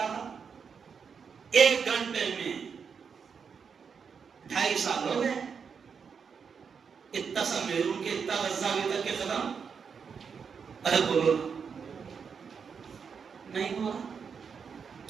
تھا؟ 1 گھنٹے میں. 2.5 سال ہو گئے، اتنا سا میرون کے اتنا غزہ ابھی تک کے ختم. ارے بولو نہیں ہوا.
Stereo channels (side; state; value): left; quieter; 6.2 dB